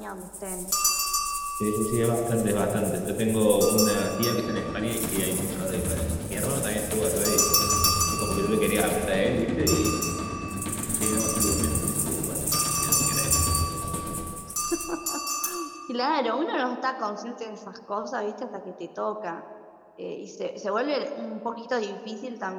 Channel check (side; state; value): both; identical; correlation 1.00